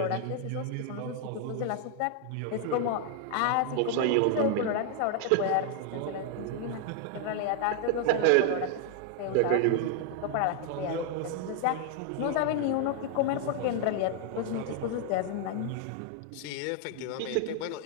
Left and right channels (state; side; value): different; both; correlation 0.00